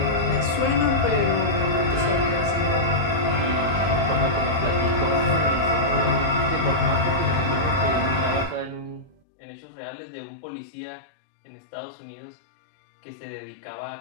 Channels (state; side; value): drops out; right; at 9.2 s